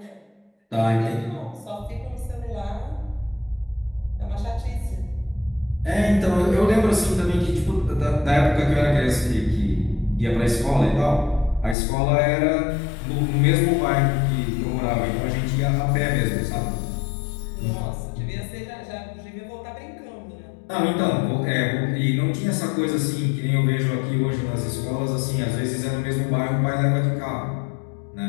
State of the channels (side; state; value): right; drops out; at 11.8 s